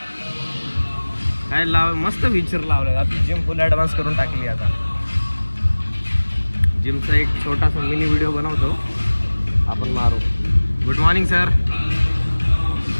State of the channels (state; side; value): inverted; both; correlation -1.00